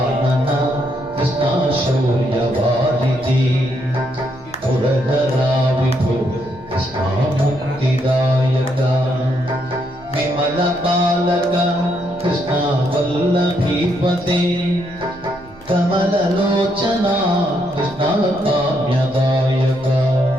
కృష్ణ శౌర్యవారిధి పురధరా విభో కృష్ణ ముక్తిదాయక విమల బాలక కృష్ణ వల్లభీపతే కమలలోచన కృష్ణ కామ్యదాయక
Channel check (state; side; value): noise; right; rumble, 24 dB below the sound